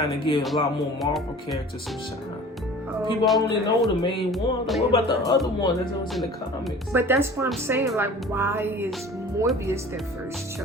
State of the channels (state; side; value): normal; both; correlation 0.43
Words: to give a lot more Marvel characters some shine. People only know the main one. What about the other one that was in the comics? But that's what I'm saying. Like, why is Morbius their first